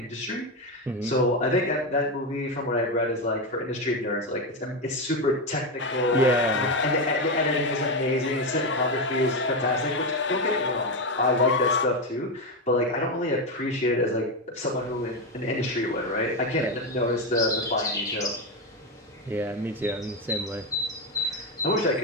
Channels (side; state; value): both; normal; correlation 0.11